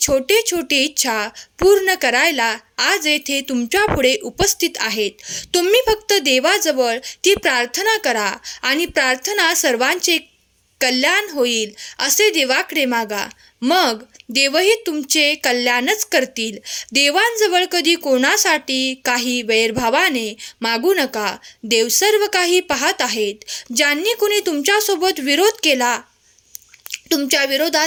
छोटे इच्छा पूर्ण करायला आज येथे तुमच्या पुढे उपस्थित आहेत. तुम्ही फक्त देवाजवळ ती प्रार्थना करा आणि प्रार्थना सर्वांचे कल्याण होईल असे देवाकडे मागा. मग देवही तुमचे कल्याणच करतील. देवांजवळ कधी कोणासाठी काही वैरभावाने मागू नका. देव सर्व काही पाहत आहेत. ज्यांनी कुणी तुमच्यासोबत विरोध केला, तुमच्या विरोधात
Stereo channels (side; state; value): both; identical; correlation 1.00